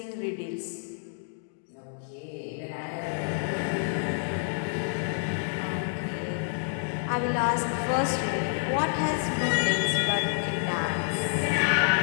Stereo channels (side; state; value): right; silent; digital silence